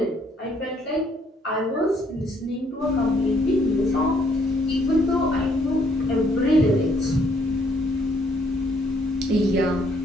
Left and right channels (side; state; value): both; normal; correlation 0.68